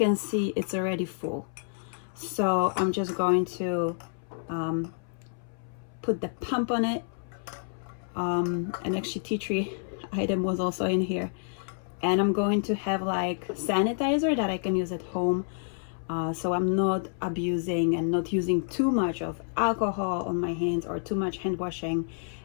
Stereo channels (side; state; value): right; silent; 59 dB below the other